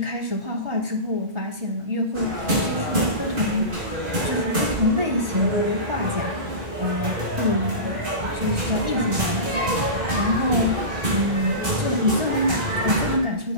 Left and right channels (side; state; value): left; late; 2.5 ms